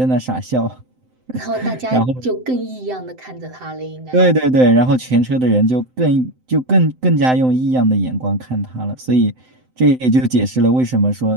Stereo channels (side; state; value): left; late; 7.8 ms